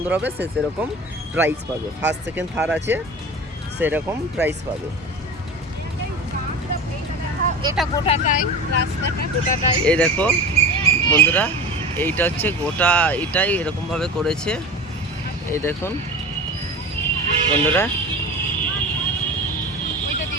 হবে সে সেরকম প্রাইজ পাবে। ফার্স্ট সেকেন্ড থার্ড আছে, সেরকম প্রাইজ পাবে। এটা গোটাটাই, রাস্তাটা গোটাটাই। এই দেখো বন্ধুরা, এইটা হচ্ছে গোটা, এটাই এরকমভাবে করেছে। এই দেখুন বন্ধুরা,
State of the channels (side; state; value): both; normal; correlation 0.32